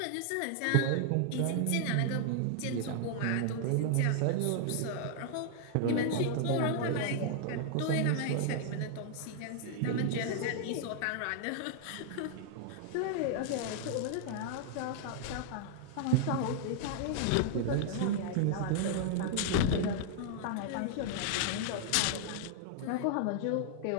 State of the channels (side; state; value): both; different; correlation -0.01